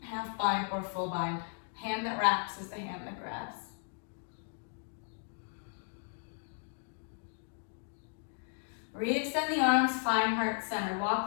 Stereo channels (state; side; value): silent; right; 54 dB below the other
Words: Half bind or full bind. Hand that wraps is the hand that grabs. Re-extend the arms, find heart center.